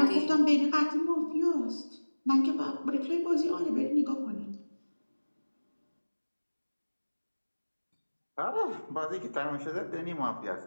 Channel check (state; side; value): inverted; both; correlation -1.00